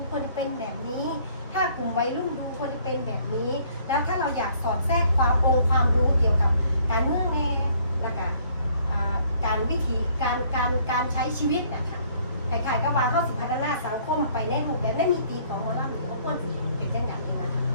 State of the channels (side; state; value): both; inverted; correlation -0.61